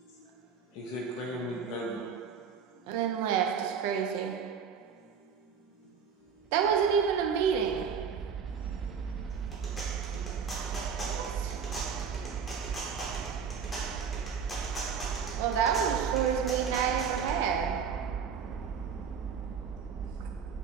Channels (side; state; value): left; quieter; 6.7 dB